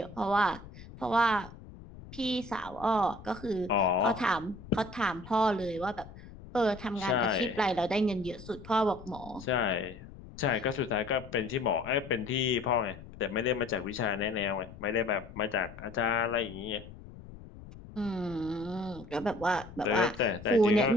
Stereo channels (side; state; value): left; noise; rumble, 16 dB below the sound